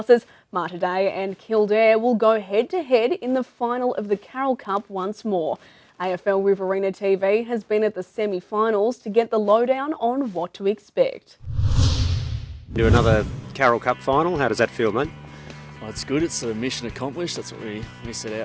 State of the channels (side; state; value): both; identical; correlation 1.00